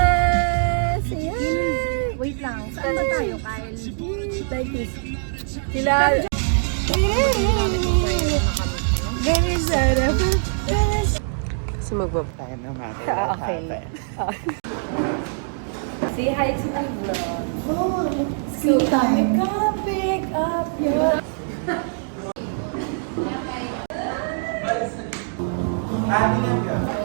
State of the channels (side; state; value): left; silent; digital silence